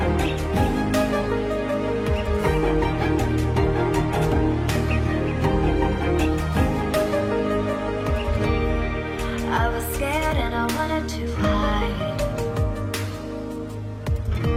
I was scared and I wanted to hide.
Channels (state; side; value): identical; both; correlation 1.00